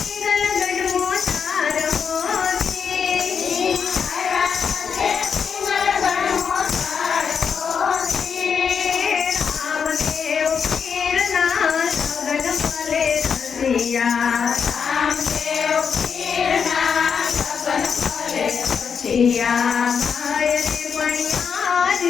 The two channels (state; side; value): quieter; right; 6.6 dB